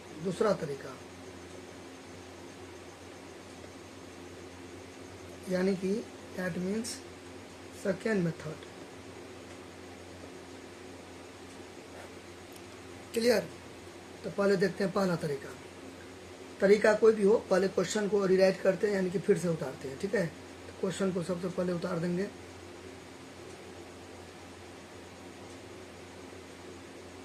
दूसरा तरीका यानी कि that means second method. Clear? तो पहले देखते हैं पहला तरीका कोई भी हो, पहले क्वेश्चन को रिराइट करते हैं यानी कि फिर से उतारते हैं, ठीक है। तो क्वेश्चन को सबसे पहले उतार देंगे।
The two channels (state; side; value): identical; both; correlation 1.00